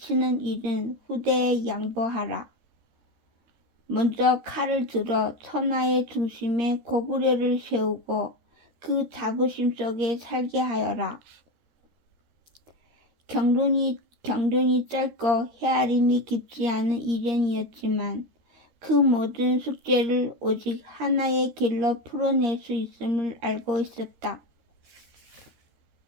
일은 후대에 양보하라. 먼저 칼을 들어 천하의 중심에 고구려를 세우고 그 자부심 속에 살게 하여라. 경륜이 짧고 헤아림이 깊지 않은 이련이었지만 그 모든 숙제를 오직 하나의 길로 풀어낼 수 있음을 알고 있었다.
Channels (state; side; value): late; left; 13 ms